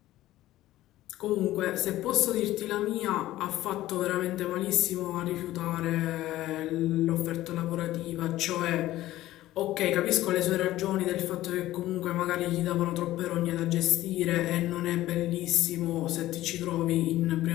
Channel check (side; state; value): right; quieter; 15.3 dB